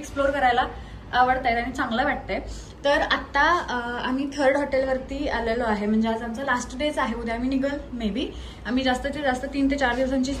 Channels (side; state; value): both; identical; correlation 1.00